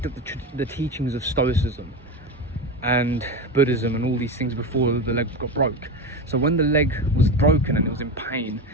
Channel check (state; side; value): normal; both; correlation 0.20